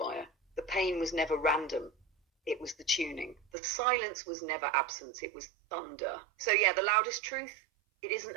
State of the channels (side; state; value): left; drops out; at 3.4 s